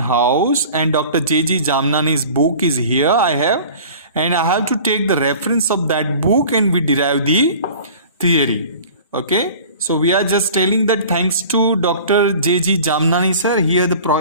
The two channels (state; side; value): inverted; both; correlation -0.43